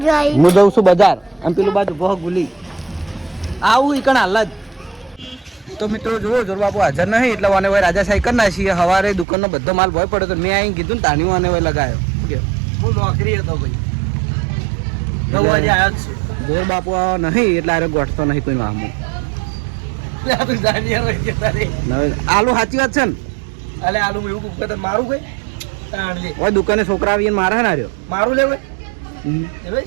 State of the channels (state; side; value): drops out; left; at 9.2 s